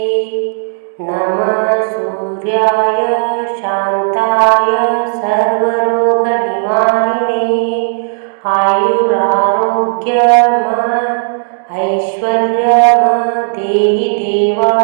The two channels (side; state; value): left; silent; digital silence